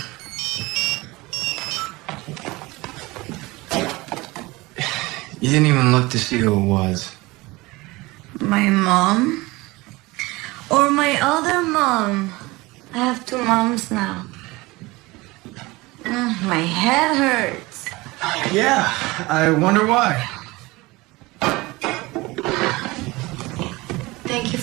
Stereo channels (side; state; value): left; quieter; 21.9 dB